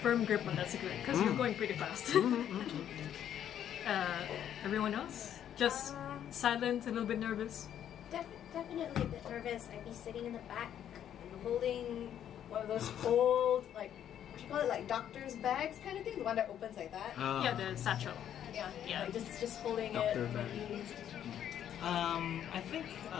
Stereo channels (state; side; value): quieter; right; 10.1 dB